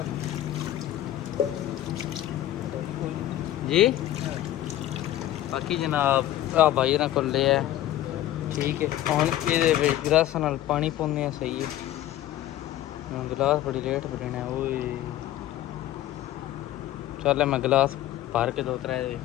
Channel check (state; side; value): quieter; right; 13.5 dB